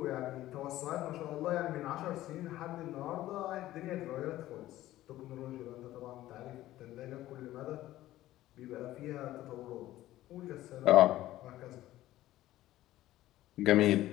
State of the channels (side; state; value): right; quieter; 15.1 dB